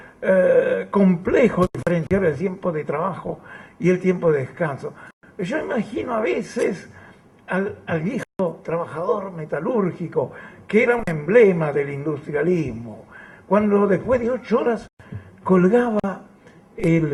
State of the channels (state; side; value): identical; both; correlation 1.00